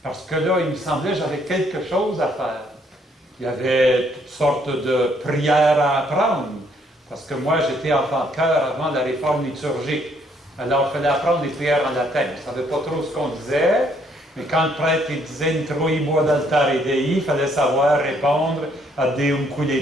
Parce que là, il me semblait que j'avais quelque chose à faire. Il y avait toutes sortes de prières à apprendre. Parce que moi, j'étais enfant de cœur avant la réforme liturgique. Alors, il fallait apprendre des prières en latin. Je ne savais pas trop ce qu'on disait. Mais quand le prêtre disait Introibo ad altare Dei, il fallait savoir répondre à Deum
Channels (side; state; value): both; normal; correlation 0.68